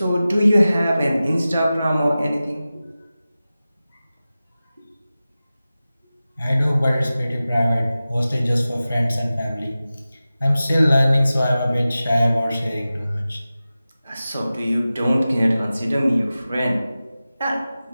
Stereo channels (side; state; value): both; inverted; correlation -0.95